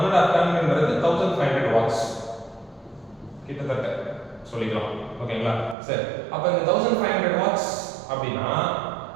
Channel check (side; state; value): left; drops out; at 5.8 s